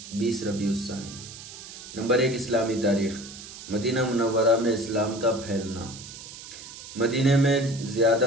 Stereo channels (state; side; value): noise; right; hiss, 14 dB below the sound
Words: 20 ربیع الثانی۔ نمبر 1، اسلامی تاریخ۔ مدینہ منورہ میں اسلام کا پھیلنا۔ مدینہ میں